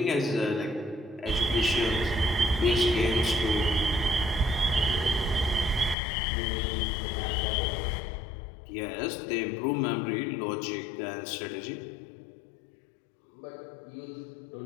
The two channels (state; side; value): drops out; right; at 6.0 s